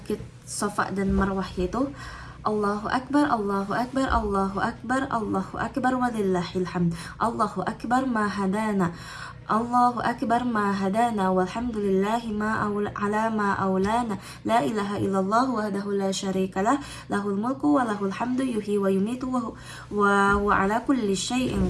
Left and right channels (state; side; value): identical; both; correlation 1.00